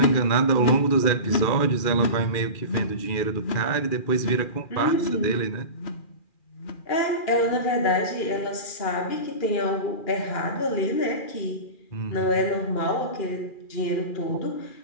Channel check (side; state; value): right; late; 2.4 ms